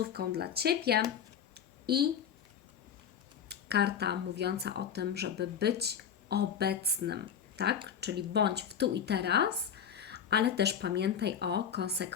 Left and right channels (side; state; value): right; quieter; 8.0 dB